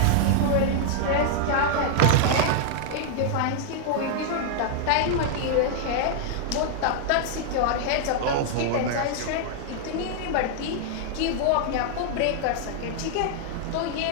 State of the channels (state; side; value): different; both; correlation -0.01